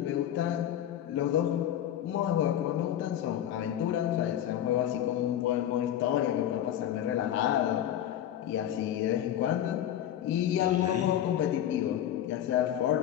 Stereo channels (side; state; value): right; quieter; 11.1 dB